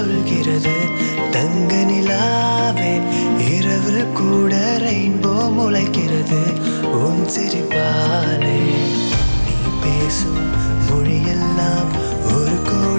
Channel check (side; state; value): both; inverted; correlation -1.00